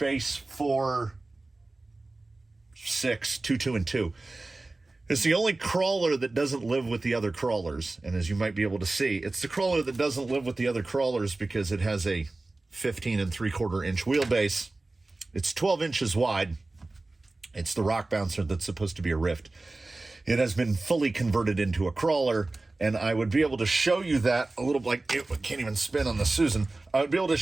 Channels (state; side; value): quieter; left; 3.1 dB